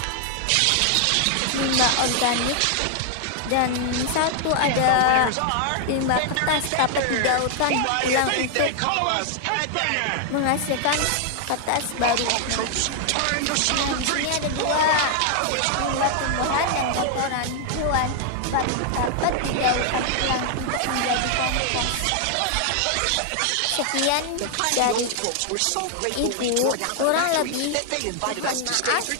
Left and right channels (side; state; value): both; different; correlation 0.00